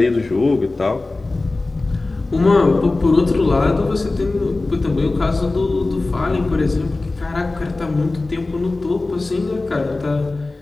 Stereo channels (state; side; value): quieter; right; 3.2 dB